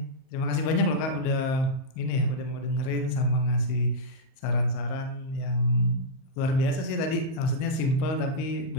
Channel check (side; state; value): right; late; 38 ms